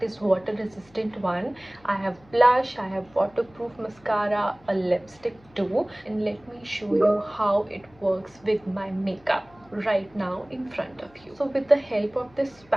is water resistant one. I have blush, I have waterproof mascara, a lipstick too, and let me show you how it works with my makeup right now in front of you. So with the help of this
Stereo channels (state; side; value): noise; left; hum, 28 dB below the sound